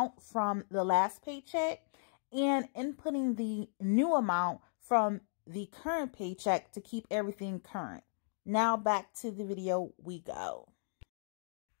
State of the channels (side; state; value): right; silent; digital silence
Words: from the last paycheck and inputting the new amount from the current paycheck to keep everything current. Now back to the video we go.